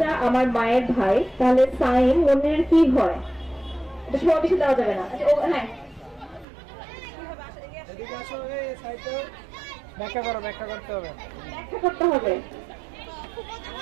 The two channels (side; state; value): left; drops out; at 6.5 s